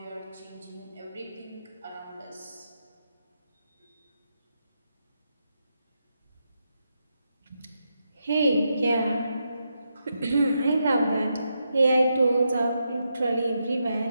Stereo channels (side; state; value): both; inverted; correlation -0.84